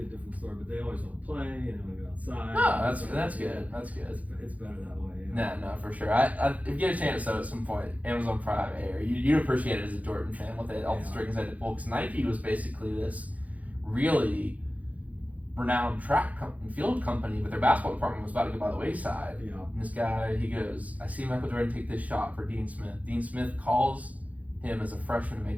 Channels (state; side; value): late; left; 0.072 ms